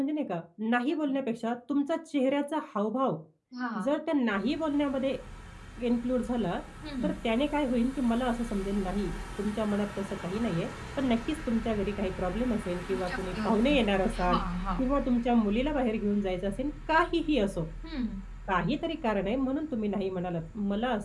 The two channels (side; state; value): both; identical; correlation 1.00